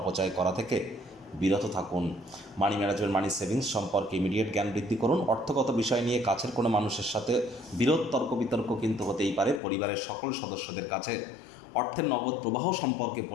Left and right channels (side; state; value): right; drops out; at 9.6 s